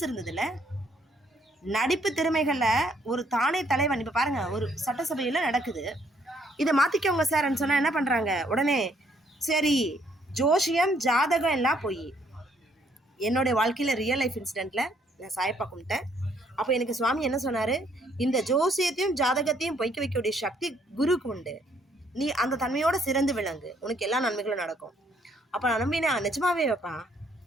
இருந்ததில்ல. நடிப்பு திறமைகளில் ஒரு தானே தலைவன். இப்போ பாருங்கள், ஒரு சட்டசபையில் நடக்குது, இதை மாற்றிக்கோங்க சார்ன்னு சொன்னால் என்ன பண்ணுறாங்க? உடனே சரி, ஜோசியம் ஜாதகம் எல்லாம் போய் என்னுடைய வாழ்க்கையில் ரியல் லைஃப் இன்சிடெண்ட்டில் நான் சாயப்பா கும்பிட்டேன். அப்போ எனக்கு சுவாமி என்ன சொன்னார்? இந்த ஜோசியத்தையும் ஜாதகத்தையும் பொய்க்க வைக்கக்கூடிய சக்தி குருக்கு உண்டு. நீ அந்த தன்மையோட சிறந்து விளங்கு, உனக்கு எல்லா நன்மைகளும் நடக்கும். அப்போ நான் நம்பினா நிஜமாவே வைப்பான்.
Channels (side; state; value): both; normal; correlation 0.67